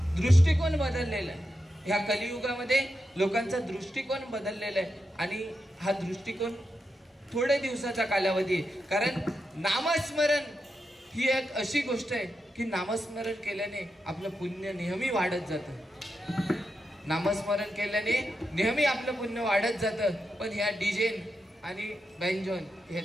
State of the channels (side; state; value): both; normal; correlation 0.87